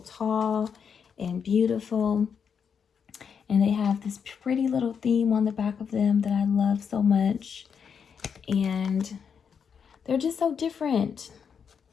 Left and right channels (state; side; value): quieter; right; 6.8 dB